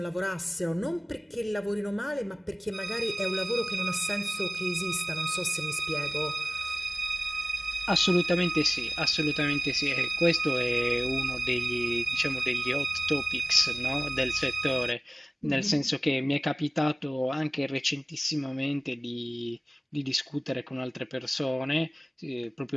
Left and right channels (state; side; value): normal; both; correlation 0.97